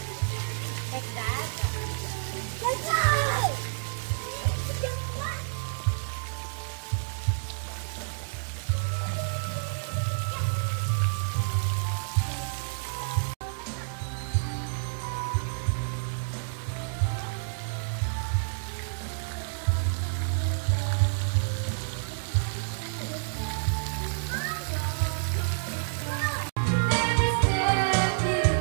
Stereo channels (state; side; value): silent; left; digital silence